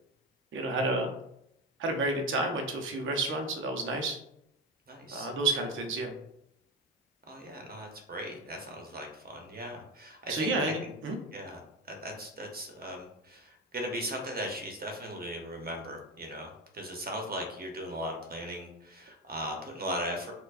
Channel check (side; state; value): both; normal; correlation 0.17